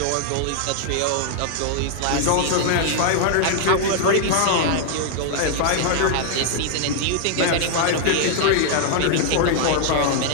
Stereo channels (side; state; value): both; different; correlation 0.00